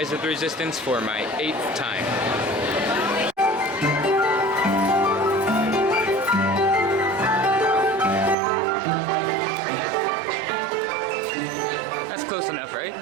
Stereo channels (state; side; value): drops out; left; at 8.3 s